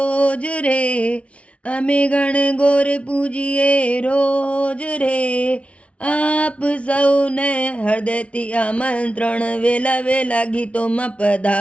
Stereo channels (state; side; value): late; right; 0.062 ms